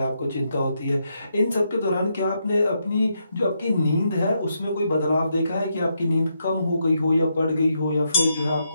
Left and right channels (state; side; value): inverted; both; correlation -0.80